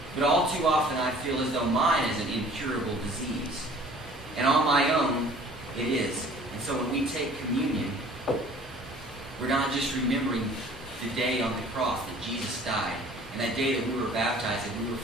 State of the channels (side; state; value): both; normal; correlation 0.50